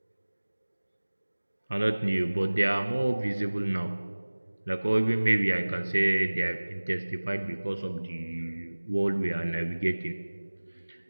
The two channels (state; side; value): inverted; both; correlation -1.00